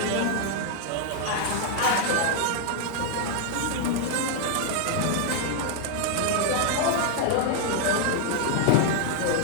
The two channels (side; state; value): both; different; correlation 0.00